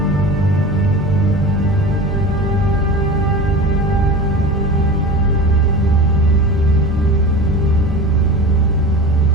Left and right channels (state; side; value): normal; both; correlation 0.33